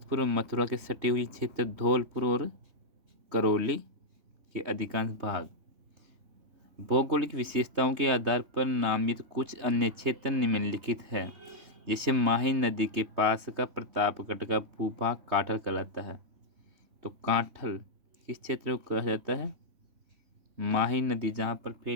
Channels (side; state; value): left; late; 3.2 ms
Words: और मथुरा के सटे हुए क्षेत्र धौलपुर और करौली के अधिकांश भाग। भौगोलिक विशेषताओं के आधार पर नामित कुछ अन्य क्षेत्र निम्नलिखित है। जैसे माही नदी के पास का प्रतापगढ़ का भूभाग काठल कहलाता है। तो काठल किस क्षेत्र को कहा जाता है? माही नदी जहाँ पर